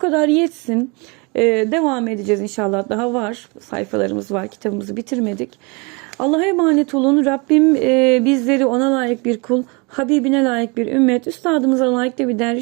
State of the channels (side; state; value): left; quieter; 29.6 dB